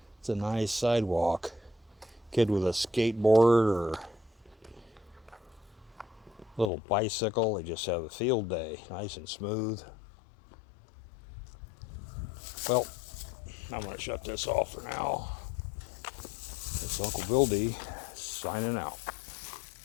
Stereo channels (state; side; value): drops out; right; at 6.7 s